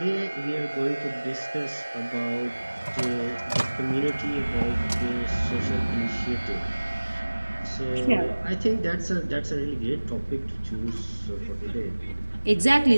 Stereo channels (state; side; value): inverted; both; correlation -1.00